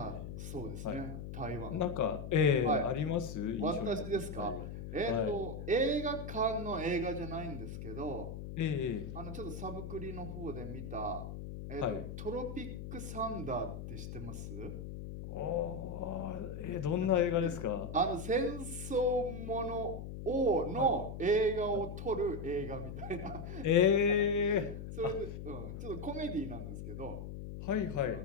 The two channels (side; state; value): left; noise; hum, 8 dB below the sound